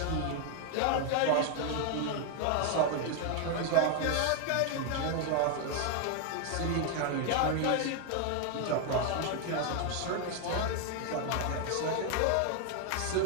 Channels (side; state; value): both; different; correlation 0.00